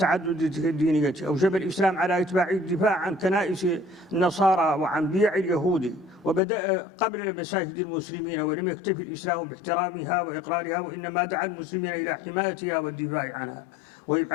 الدينية، أوجب الإسلام على إتباع الدفاع عن كنائس النصارى وعن بيع اليهود، وبدأ قبل مساجد المسلمين، ولم يكتفي الإسلام باحترامها وإقرارها، وإنما دعا المسلمين إلى حمايتها والدفاع عنها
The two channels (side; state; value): right; drops out; at 6.4 s